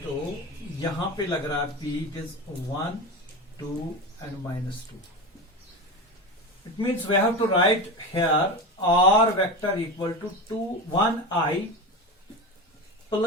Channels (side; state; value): both; normal; correlation 0.24